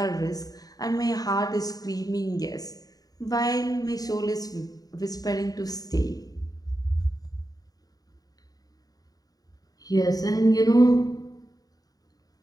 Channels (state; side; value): late; right; 0.18 ms